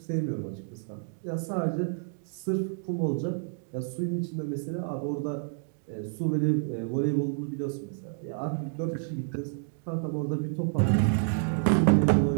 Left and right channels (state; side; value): silent; left; digital silence